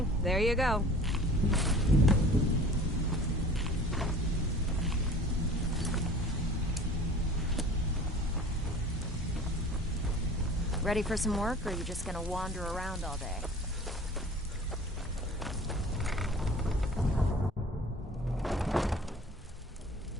there you go. Ready for some work, or are you just gonna wander around all day?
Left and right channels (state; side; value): normal; both; correlation 0.45